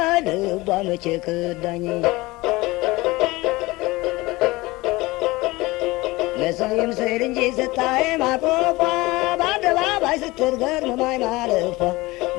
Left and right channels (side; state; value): right; quieter; 21.2 dB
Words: ልቧ መቼ ከዳኝ ለሰው ይምሰል እንጂ ስታይ ማቆፏ በአደባባይ ስትገርመኝ ማለፏ